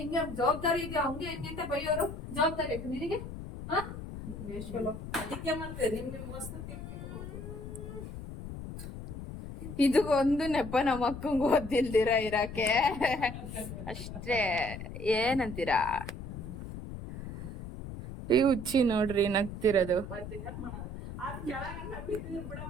ಜವಾಬ್ದಾರಿ ಇದೆಯಾ ಹಂಗೆ ಹೆಂಗೆ ಅಂತ ಬೈಯೋರು. ಜವಾಬ್ದಾರಿ ಆಯ್ತು ನಿನಗೆ. ಅದಕ್ಕೆ ಮತ್ತೆ ನಿಮ್ಗೆ ಮಸ್ತ್ ಇದು ಒಂದು ನೆಪ ನಮ್ಮ ಅಕ್ಕಂಗ್ ಓದಿಲ್ದಿರ ಇರಕ್ಕೆ ಅಷ್ಟೇ. ಏನಂತೀರಾ? ಈ ಹುಚ್ಚಿ ನೋಡ್ರಿ ನಗ್ತಿರೋದು. ಅದ್ ಕೆಳಗನ್ನ ಬಿದ್ದಿದ್ರು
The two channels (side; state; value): left; noise; rumble, 9 dB below the sound